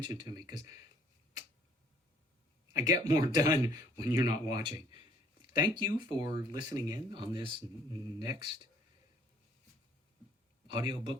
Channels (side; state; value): both; normal; correlation 0.59